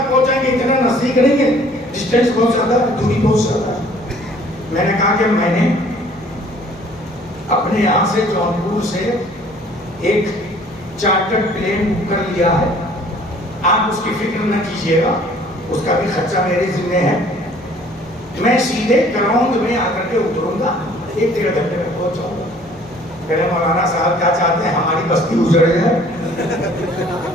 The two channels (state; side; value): noise; left; hum, 26 dB below the sound